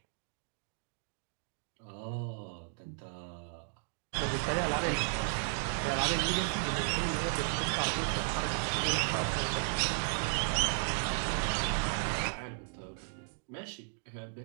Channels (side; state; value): left; silent; digital silence